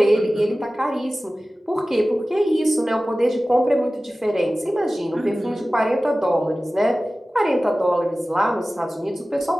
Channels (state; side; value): normal; both; correlation 0.96